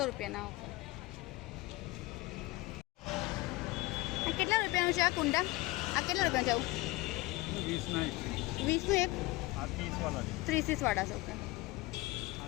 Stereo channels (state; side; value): quieter; right; 20.7 dB